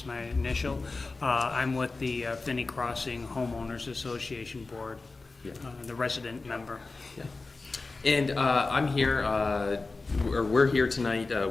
my initial. I'm with the Finney Crossing Homeowners Association Board, Yeah. The resident member. Yeah. And I'm here, or we're here tonight.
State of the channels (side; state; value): right; quieter; 3.7 dB